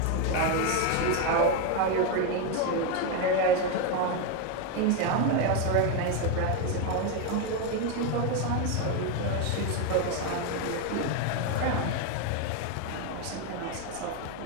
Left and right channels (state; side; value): different; both; correlation 0.02